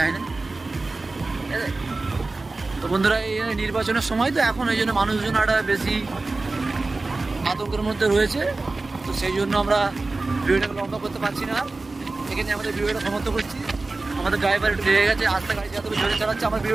না। তো বন্ধুরা, এই নির্বাচনের সময় তো এখন ওই জন্য মানুষজন একটা বেশি আতঙ্কের মধ্যে রয়েছে। তো সেই জন্য আমরা ভিডিওটাকে লম্বা করতে পারছি না। এখানে আমাদের ভিডিওটা সমাপ্ত করছি। আমাদের ড্রাইভার একটু লেগে গেছে, আস্তে গাড়ি যাতে জোরে চালাচ্ছে, আমার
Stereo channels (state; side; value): quieter; left; 3.4 dB